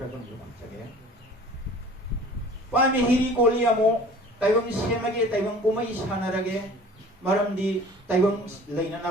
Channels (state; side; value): normal; both; correlation 0.46